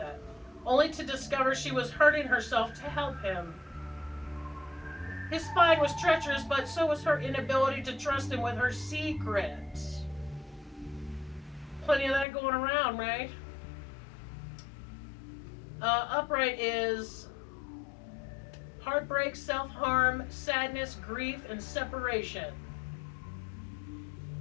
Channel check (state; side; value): drops out; right; at 12.2 s